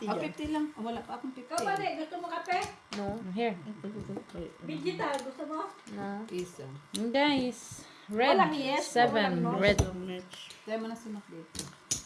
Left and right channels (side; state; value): both; identical; correlation 1.00